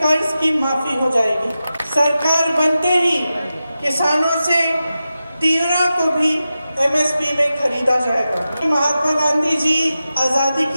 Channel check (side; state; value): both; inverted; correlation -0.92